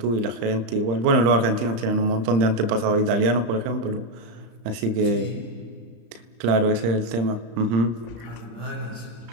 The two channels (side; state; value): left; late; 35 ms